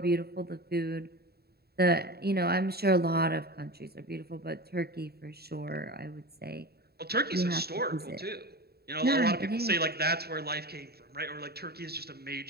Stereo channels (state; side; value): late; left; 0.46 ms